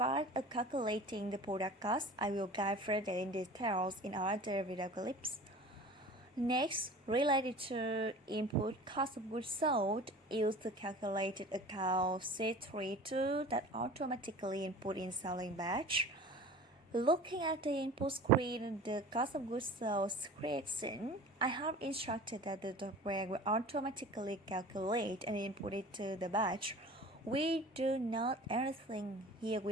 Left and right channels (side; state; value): both; normal; correlation 0.40